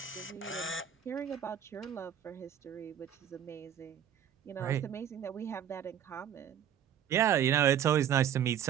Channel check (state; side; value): quieter; left; 9.5 dB